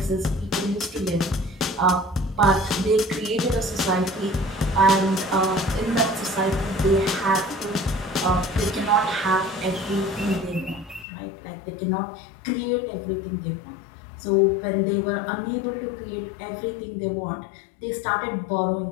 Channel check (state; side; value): drops out; right; at 11.1 s